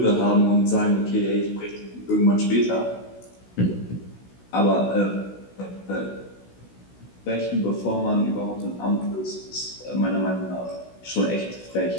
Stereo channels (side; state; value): right; late; 16 ms